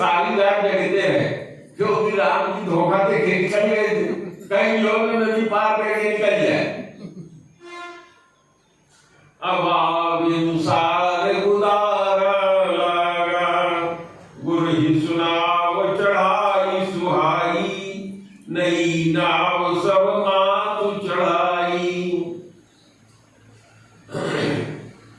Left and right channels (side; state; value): both; identical; correlation 1.00